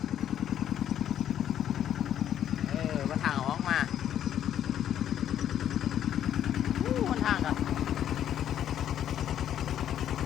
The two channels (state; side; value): quieter; right; 10.5 dB